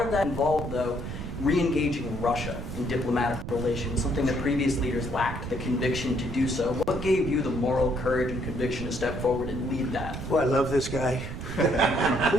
of that involved, though, re-engaging Russia in diplomatic relations, something that previous leaders lacked the conviction to do so. What gave you the moral courage and conviction to step forward and lead that? Well, I love this guy. Who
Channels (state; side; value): noise; right; rumble, 8 dB below the sound